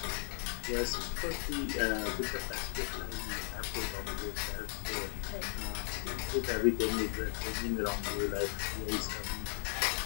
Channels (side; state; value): right; silent; 54 dB below the other